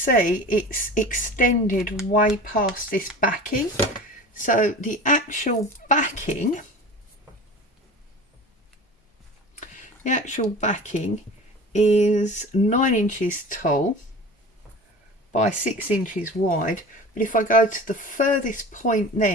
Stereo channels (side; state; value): both; normal; correlation 0.37